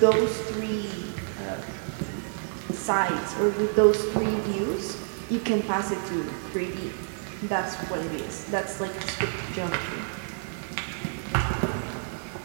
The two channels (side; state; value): left; silent; digital silence